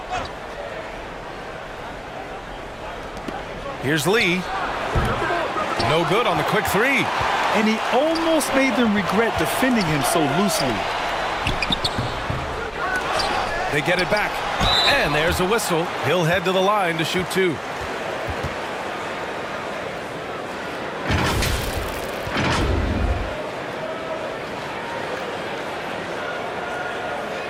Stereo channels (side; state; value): both; identical; correlation 1.00